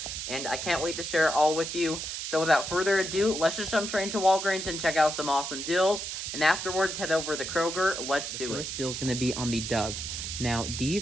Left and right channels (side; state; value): right; noise; hiss, 5 dB below the sound